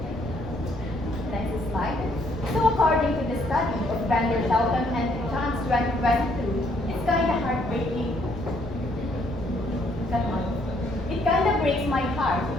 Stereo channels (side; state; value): left; noise; rumble, 14 dB below the sound